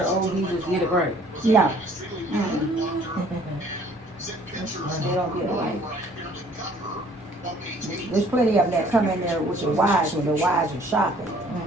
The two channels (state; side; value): normal; both; correlation 0.57